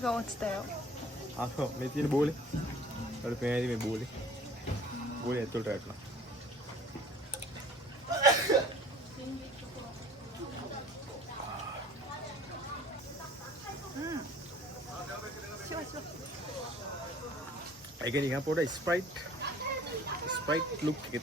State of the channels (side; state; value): both; normal; correlation 0.50